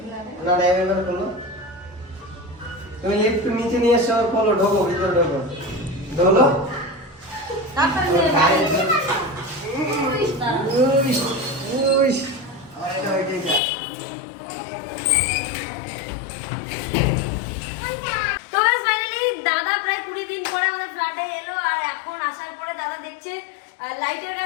খোলো, তুমি লিফট নিচে নিয়ে এসো, খোলো, ঢোকো ভিতরে, ঢোকো ঢোলো। তো গাইস ফাইনালি দাদা প্রায় 20 দিন পরে আমাদের ফ্ল্যাটে এলো, আর এখন আসার পরে দাদা দেখছে লাইটের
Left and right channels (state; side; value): drops out; right; at 13.6 s